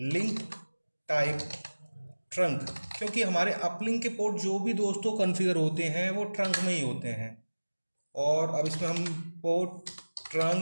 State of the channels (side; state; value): both; inverted; correlation -1.00